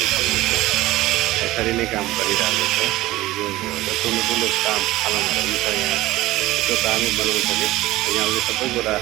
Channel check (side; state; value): left; quieter; 17.5 dB